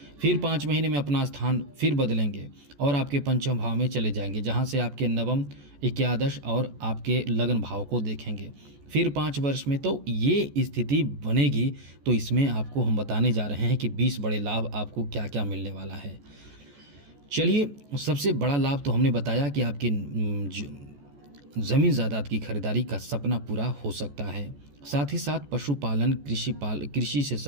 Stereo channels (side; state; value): left; late; 14 ms